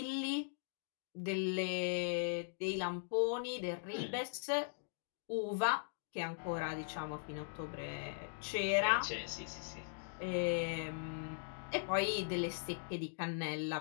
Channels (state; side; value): silent; right; digital silence